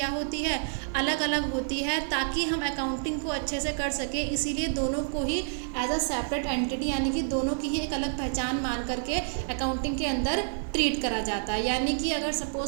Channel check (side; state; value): left; silent; 56 dB below the other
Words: होती है, अलग अलग होती है, ताकि हम अकाउंटिंग को अच्छे से कर सके। इसीलिए दोनों को ही एज अ सेपरेट एंटिटी यानी कि दोनों की ही एक अलग पहचान मान करके अकाउंटिंग के अंदर ट्रीट करा जाता है। यानी कि अगर